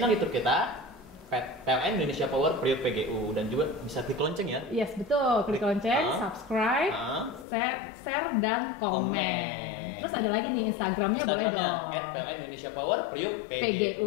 YouTube kita PLN Indonesia Power Priuk PGU, dan juga bisa klik lonceng ya. Yes, betul. Klik lonceng, subscribe, share, dan komen. Terus ada lagi nih Instagramnya boleh dong. @PLN Indonesia Power Priuk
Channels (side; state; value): right; drops out; at 7.5 s